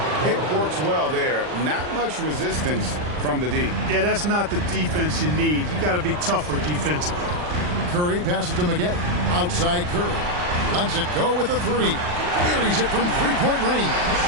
It works well there. Not much resistance from the D. Yeah, that's not the defense you need. You got to be tougher defensively. Curry passes to Maggette. Outside Curry. Lets it go with a 3. Buries it from three-point range.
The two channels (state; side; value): late; left; 40 ms